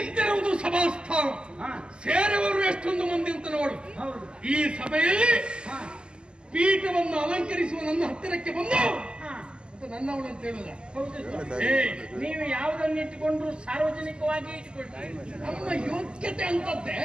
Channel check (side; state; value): left; late; 0.049 ms